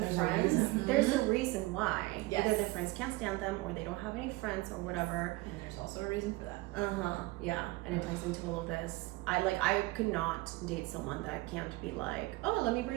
friends. There's a reason why. Either their friends can't stand them, or they don't have any friends, or whatever. And there's also a reason for that. Yeah, and it ties into all of this. I could not date someone that can't be like, oh, let me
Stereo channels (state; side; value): quieter; left; 20.7 dB